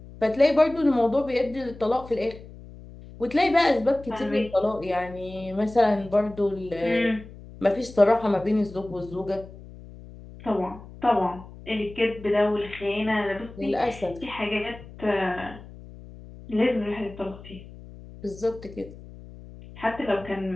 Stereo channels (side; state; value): left; noise; hum, 17 dB below the sound